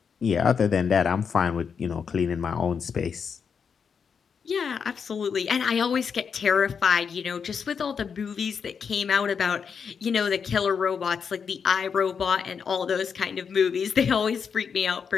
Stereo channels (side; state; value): right; quieter; 6.4 dB